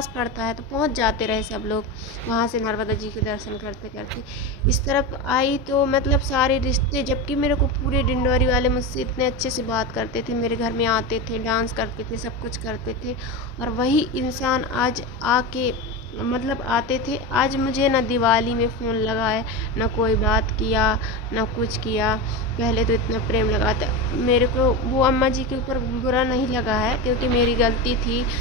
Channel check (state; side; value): normal; both; correlation 0.20